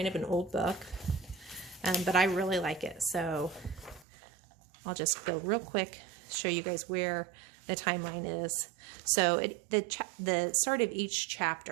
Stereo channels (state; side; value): drops out; left; at 4.0 s